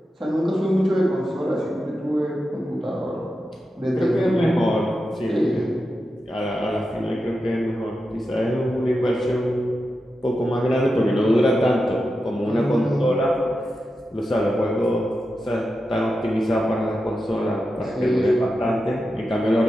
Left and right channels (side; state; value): both; normal; correlation 0.90